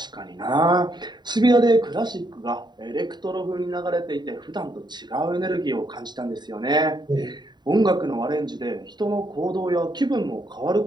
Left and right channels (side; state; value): left; late; 0.21 ms